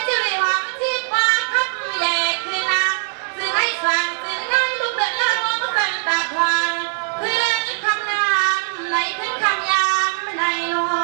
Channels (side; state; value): left; silent; 65 dB below the other